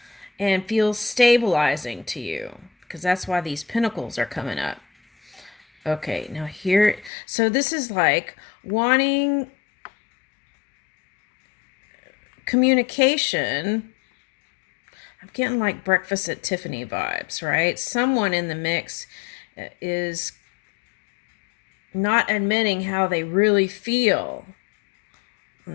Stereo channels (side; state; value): right; drops out; at 7.1 s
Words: and feels stabilizing to you, because that's why these pentacles are coming up. Okay, now here, so this is like wanting communication. I'm getting like Breakfast at Tiffany vibes, right? Someone in the mix is not admitting how they really feel.